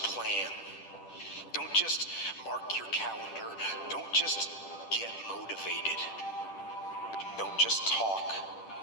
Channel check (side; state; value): right; late; 10 ms